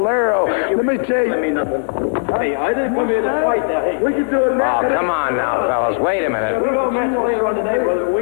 Let me tell you. Let me nothing. Hey, I didn't come here to fight now. Hey, We can do it now. Oh, come on now, fellas. Wait a minute. we're going to match later on today, brother.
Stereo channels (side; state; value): right; silent; digital silence